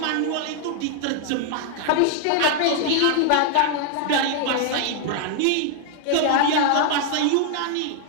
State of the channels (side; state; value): both; different; correlation 0.00